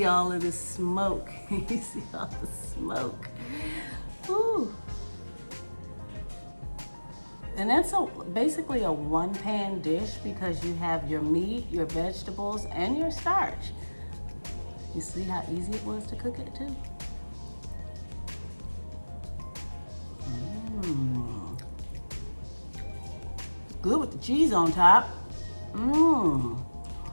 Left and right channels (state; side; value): inverted; both; correlation -1.00